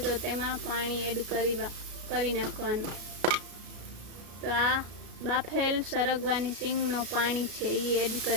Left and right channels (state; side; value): late; left; 33 ms